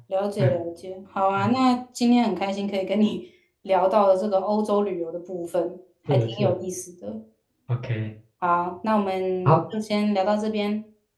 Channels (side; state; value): both; identical; correlation 1.00